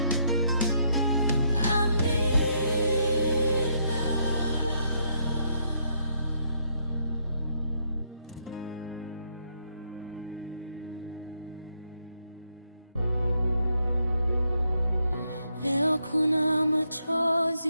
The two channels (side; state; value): both; inverted; correlation -0.75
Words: Amina. Leo kuna